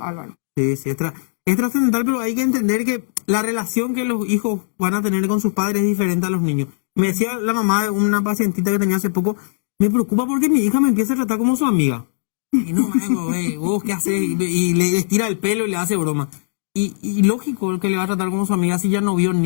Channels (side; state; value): right; silent; digital silence